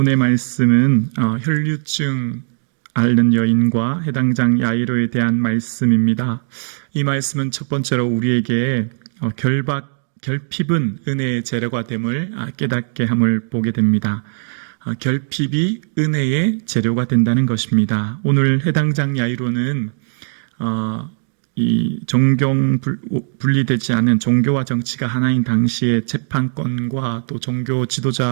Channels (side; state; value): left; silent; digital silence